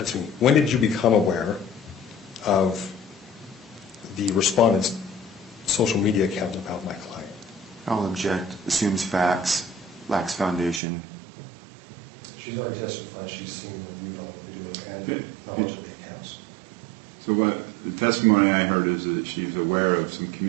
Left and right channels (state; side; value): drops out; left; at 10.8 s